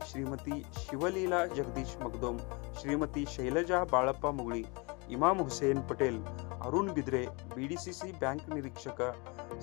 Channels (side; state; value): right; quieter; 29.3 dB